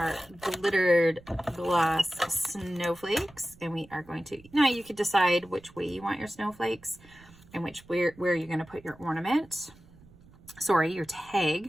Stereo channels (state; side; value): noise; right; rumble, 24 dB below the sound